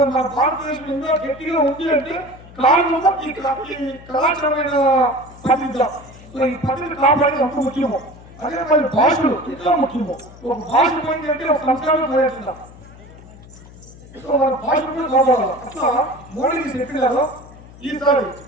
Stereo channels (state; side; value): noise; left; hum, 20 dB below the sound